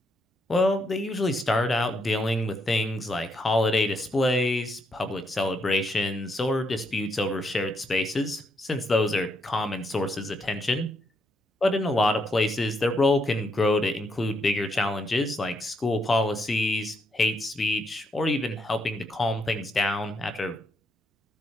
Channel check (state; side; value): normal; both; correlation 0.77